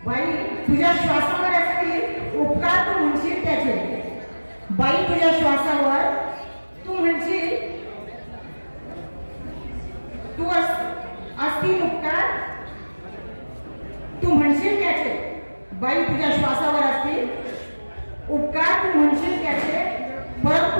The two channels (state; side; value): inverted; both; correlation -1.00